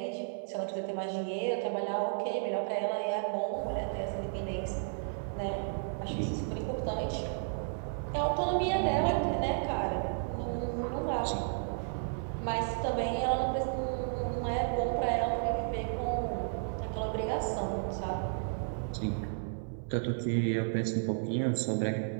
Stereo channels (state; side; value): silent; left; 56 dB below the other